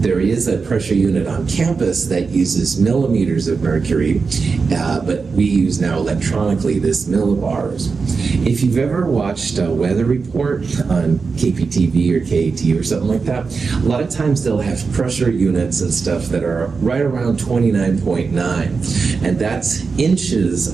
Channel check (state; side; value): quieter; left; 4.8 dB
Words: is a pressure unit on campus that uses millimeters of mercury, but we use now electronically this millibars. If you've ever watched a weather report on KPTV or KAT or something like that, a lot of times they'll have pressure units and stuff that are right around 29.9, and that's inches